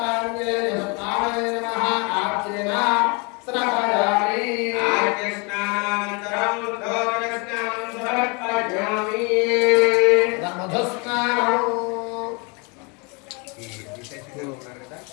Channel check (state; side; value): quieter; right; 31.1 dB